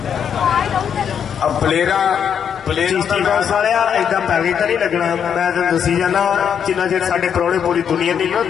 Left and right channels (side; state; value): right; quieter; 8.0 dB